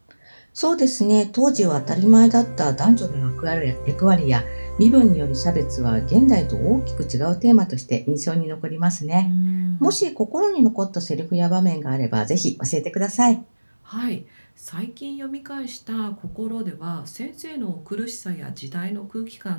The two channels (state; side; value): inverted; both; correlation -1.00